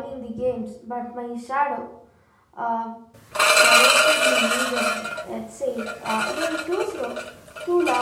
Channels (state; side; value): identical; both; correlation 1.00